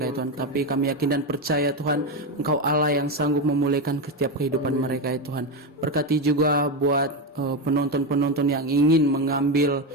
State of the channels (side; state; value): both; normal; correlation 0.13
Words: ya Tuhan, tapi kami yakin dan percaya Tuhan, Engkau Allah yang sanggup memulihkan setiap kehidupan mereka ya Tuhan. Berkati juga buat penonton-penonton yang ingin mengambil